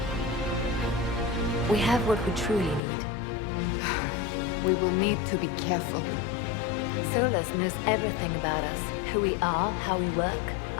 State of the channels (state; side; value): drops out; right; at 2.8 s